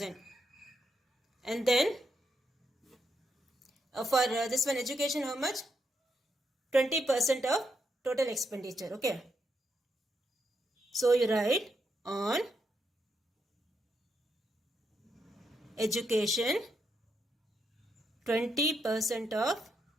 And then for this one, education, how much? 20% of total expenditure. Okay. So you write on education 20% of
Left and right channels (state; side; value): normal; both; correlation 0.81